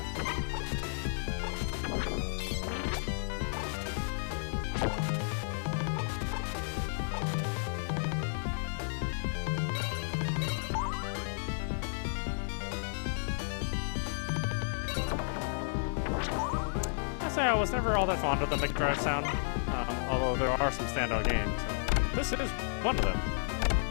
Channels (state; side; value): silent; right; digital silence